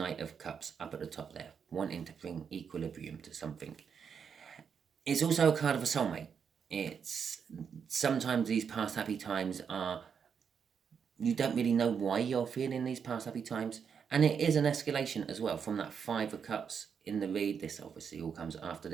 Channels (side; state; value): left; quieter; 6.8 dB